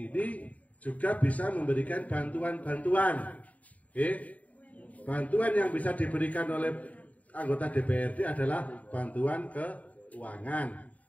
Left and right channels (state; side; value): late; right; 0.070 ms